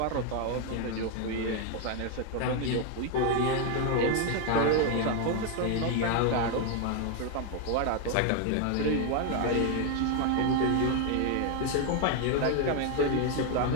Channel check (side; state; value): both; different; correlation 0.01